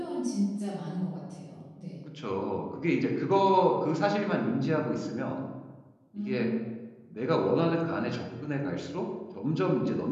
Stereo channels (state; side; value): identical; both; correlation 1.00